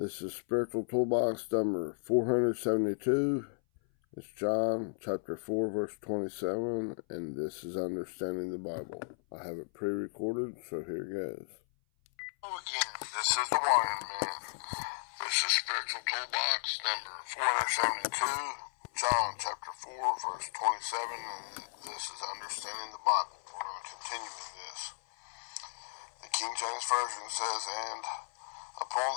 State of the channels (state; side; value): silent; right; 55 dB below the other